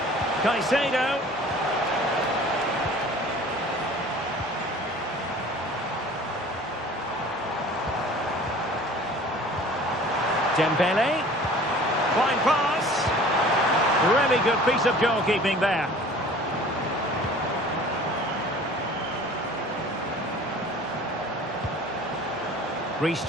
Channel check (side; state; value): both; normal; correlation 0.46